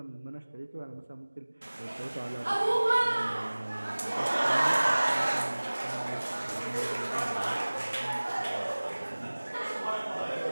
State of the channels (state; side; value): inverted; both; correlation -1.00